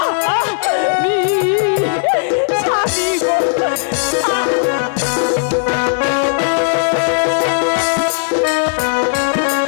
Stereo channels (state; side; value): silent; right; 64 dB below the other